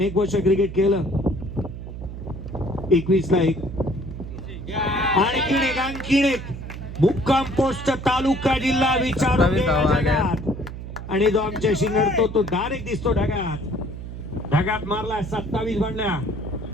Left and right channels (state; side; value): noise; right; hum, 9 dB below the sound